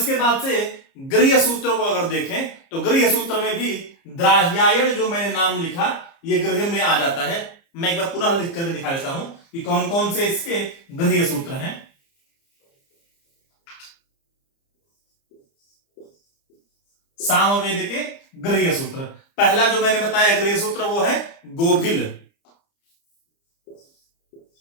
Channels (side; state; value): right; late; 30 ms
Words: बाद से गृह्य सूत्र को अगर देखें तो गृह्य सूत्र में भी द्राह्यायन जो मैंने नाम लिखा ये गृह्य में आ जाता है। मैं एक बार पुनः लिख करके दिखा देता हूं कि कौन कौन से इसके गृह्य सूत्र हैं। सामवेद के गृह्य सूत्र, पहला जो मैंने बताया गृह्य सूत्र वो है गोभिल।